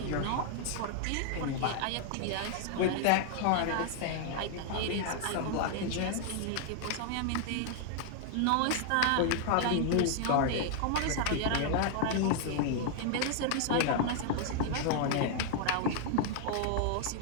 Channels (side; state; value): both; different; correlation 0.00